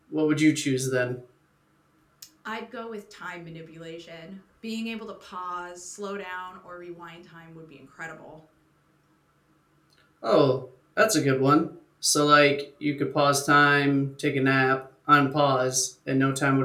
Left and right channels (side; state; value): both; identical; correlation 1.00